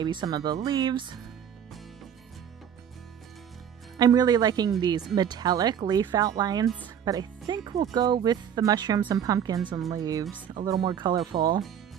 some of the leaves. I'm really liking these metallic leaf outlines, but I think we'll go with the mushrooms and pumpkins and leaves, a little more colorful.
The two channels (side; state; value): left; quieter; 8.8 dB